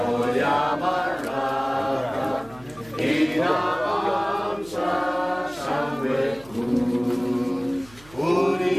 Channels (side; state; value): right; noise; hum, 24 dB below the sound